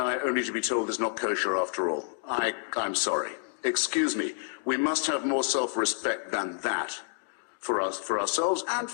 only to be told it's not kosher after all. I'm sorry. Excuse me. We must have more self-respect than that for us, for ourselves and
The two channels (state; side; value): silent; right; digital silence